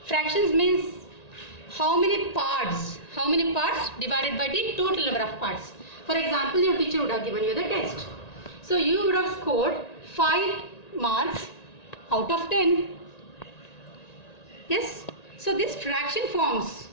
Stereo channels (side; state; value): right; late; 1.9 ms